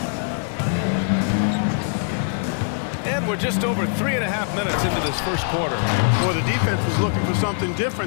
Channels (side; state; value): right; silent; 64 dB below the other